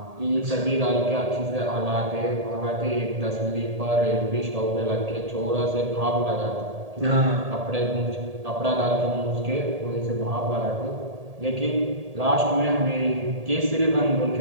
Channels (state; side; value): late; left; 1.8 ms